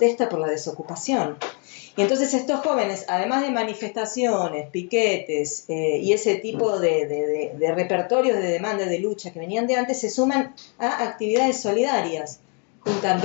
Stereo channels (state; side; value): quieter; right; 37.4 dB